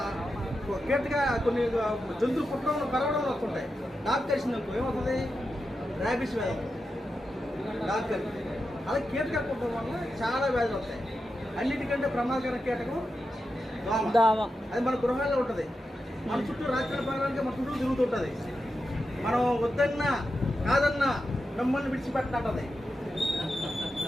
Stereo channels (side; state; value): both; normal; correlation 0.89